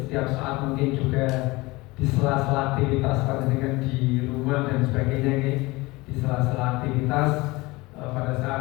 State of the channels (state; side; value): quieter; right; 22.2 dB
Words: saat, mungkin juga di sela-sela aktivitas dengan di rumah dan sebagainya, di sela-sela aktivitas pada